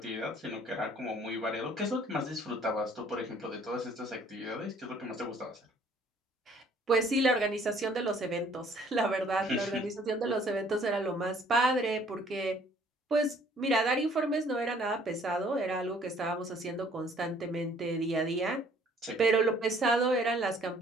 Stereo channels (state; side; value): normal; both; correlation 0.59